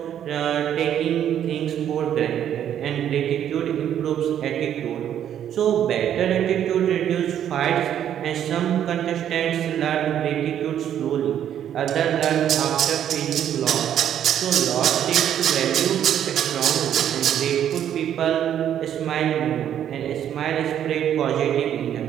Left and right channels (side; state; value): left; quieter; 10.1 dB